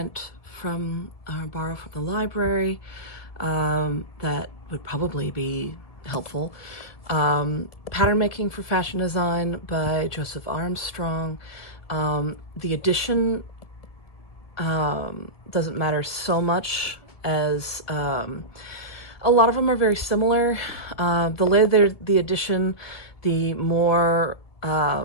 from or borrow from the library that would probably be helpful. Pattern Making for Fashion Design by Joseph Armstrong. The edition doesn't matter so much as a lot of them are very similar. The later the edition, the more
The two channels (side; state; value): right; late; 1.8 ms